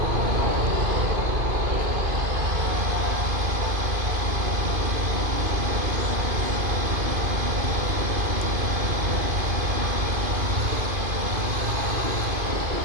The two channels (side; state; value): left; late; 2.5 ms